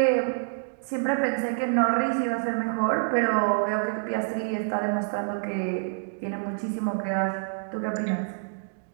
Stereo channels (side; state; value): left; silent; digital silence